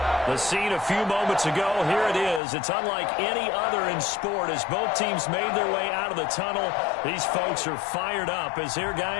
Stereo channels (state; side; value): drops out; right; at 2.4 s